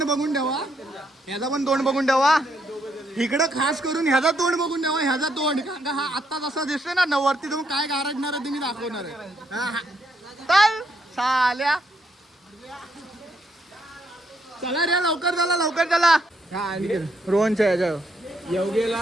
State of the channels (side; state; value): both; normal; correlation 0.74